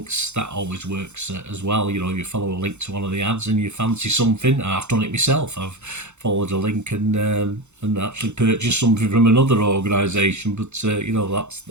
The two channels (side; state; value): left; late; 0.83 ms